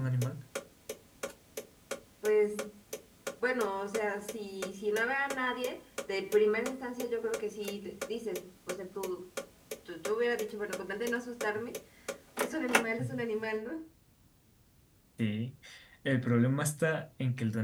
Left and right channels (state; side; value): identical; both; correlation 1.00